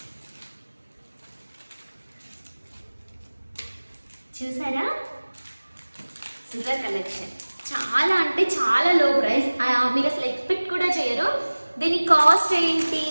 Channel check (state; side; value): inverted; both; correlation -1.00